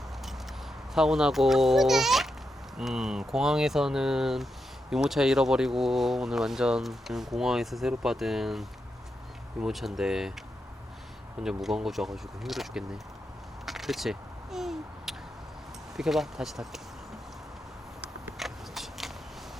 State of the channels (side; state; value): both; normal; correlation 0.86